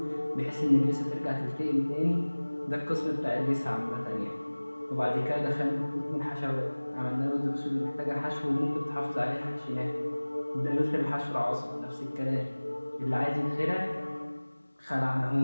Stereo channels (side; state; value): both; inverted; correlation -1.00